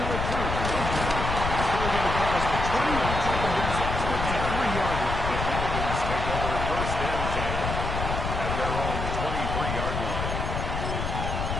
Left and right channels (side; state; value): left; noise; rumble, 3 dB below the sound